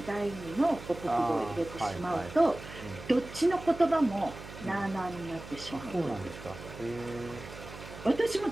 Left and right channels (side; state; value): right; noise; hum, 14 dB below the sound